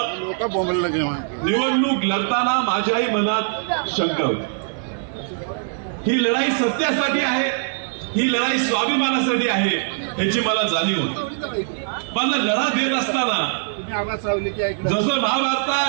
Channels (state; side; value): silent; left; digital silence